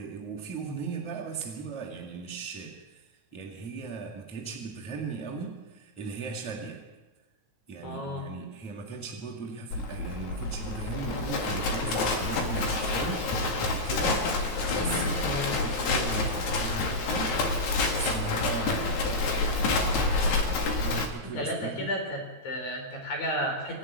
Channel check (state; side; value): late; right; 9.2 ms